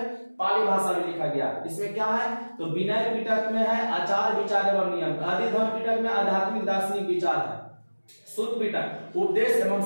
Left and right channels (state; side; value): inverted; both; correlation -1.00